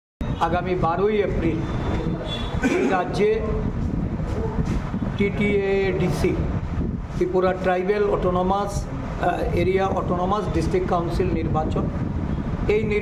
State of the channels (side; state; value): both; identical; correlation 1.00